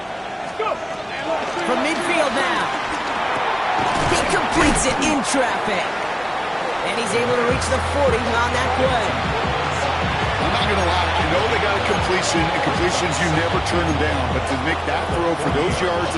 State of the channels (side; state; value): both; identical; correlation 1.00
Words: Let's go. From midfield now. He completes it in traffic. And he's able to reach the 40 on that play. I'm not going to lie. You know they got a completion, and completions, you never turn them down. But to make that throw for those yards